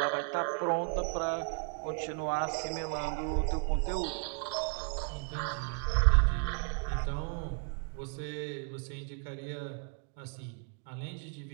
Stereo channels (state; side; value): quieter; left; 39.9 dB